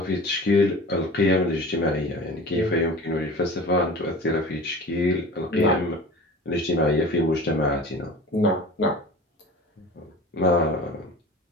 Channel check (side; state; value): both; normal; correlation 0.38